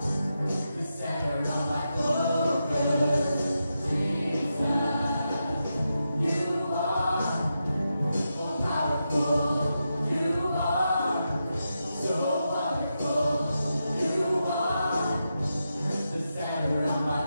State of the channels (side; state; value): both; inverted; correlation -0.87